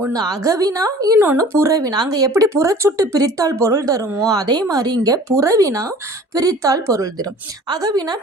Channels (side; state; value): both; normal; correlation 0.46